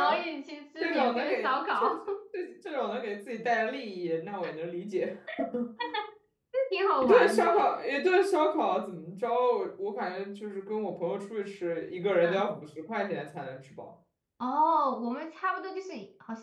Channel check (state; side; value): identical; both; correlation 1.00